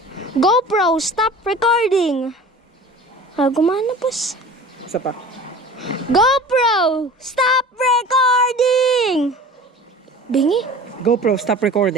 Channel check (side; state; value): both; normal; correlation 0.40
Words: GoPro, stop recording. Ah, gumana boss. Isa pa. GoPro, stop recording. Bingi. GoPro stop